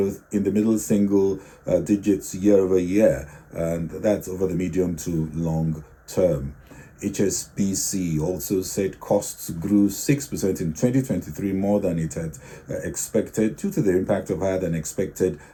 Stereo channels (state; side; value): identical; both; correlation 1.00